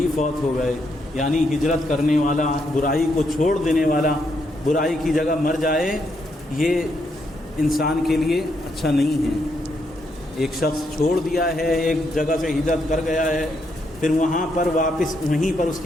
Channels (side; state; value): both; normal; correlation 0.77